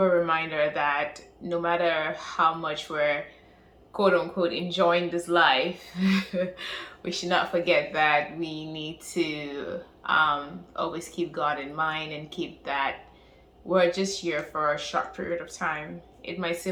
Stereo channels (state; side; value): identical; both; correlation 1.00